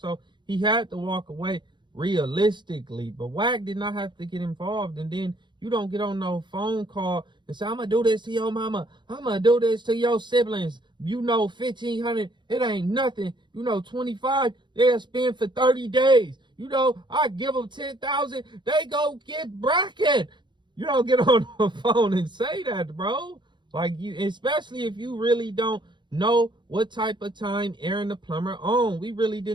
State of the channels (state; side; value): late; left; 0.22 ms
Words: he had to walk away realistically. But Wack did not have to get involved. And then you don't get on no phone call and say, I'm gonna do this to your mama, I'm gonna do this to your siblings. You know, 1,500, it ain't nothing. You know, 25, they'll spend for 30 days. You know, I give them 10,000, they go get bracket. You don't get on the phone and say that, bro. Like, you, especially if you really don't know what type of time Aron the Plumber on. We really